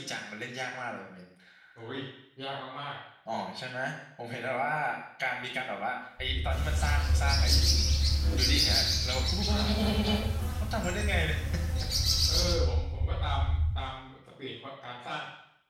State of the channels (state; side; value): identical; both; correlation 1.00